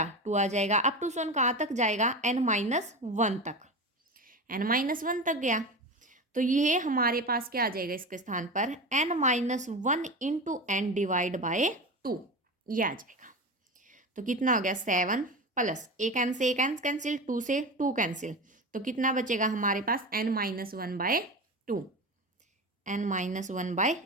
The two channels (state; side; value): normal; both; correlation 0.25